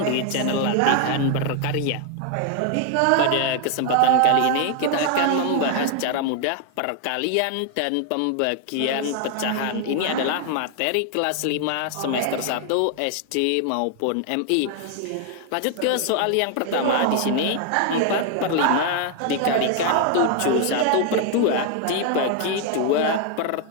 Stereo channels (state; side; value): different; both; correlation 0.00